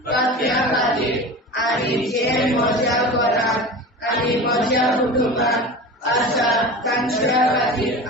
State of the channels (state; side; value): normal; both; correlation 0.32